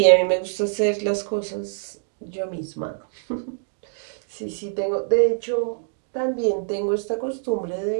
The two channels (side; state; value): left; silent; digital silence